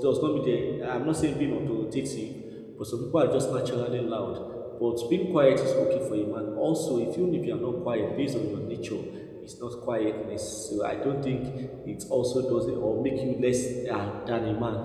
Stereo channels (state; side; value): identical; both; correlation 1.00